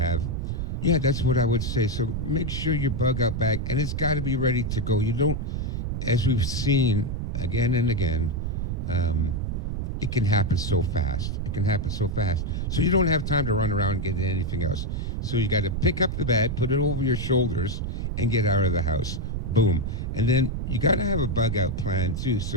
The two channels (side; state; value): right; noise; rumble, 2 dB below the sound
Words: Yeah, that's what I would say. So make sure your bug out bag, and it's got to be ready to go. You don't, as we've seen again and again, it can happen so fast. It can happen so fast. So you don't have time to run around and get anything else. So you got to pick up the bag, put it over your shoulders, and get out of the house. Boom. And then you got to have a bug out plan too.